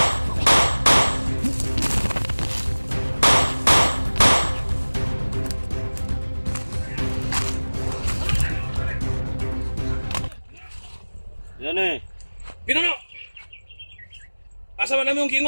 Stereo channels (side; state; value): both; inverted; correlation -1.00